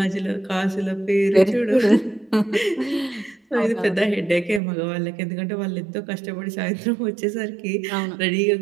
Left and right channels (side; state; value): left; drops out; at 4.6 s